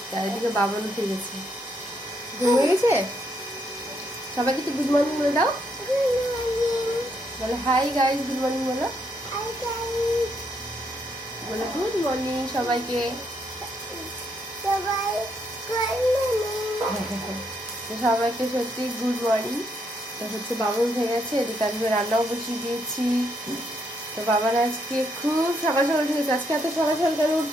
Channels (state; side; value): normal; both; correlation 0.75